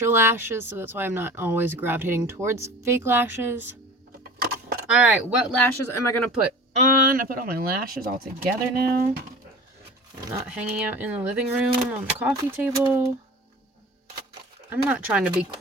lashes, so that's why I'm not always gravitating towards fake lashes. All right, what lashes am I going to put on? I put all my lashes all together now. I'm not hanging out in the living room on the coffee table. I'm not trying to be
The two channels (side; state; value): both; normal; correlation 0.39